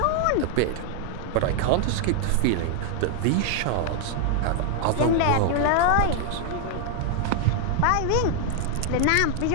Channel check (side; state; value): both; different; correlation 0.00